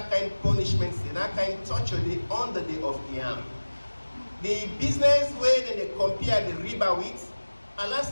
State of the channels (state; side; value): inverted; both; correlation -1.00